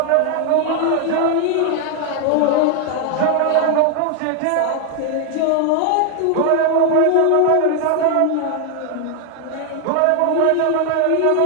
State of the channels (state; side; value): different; both; correlation 0.00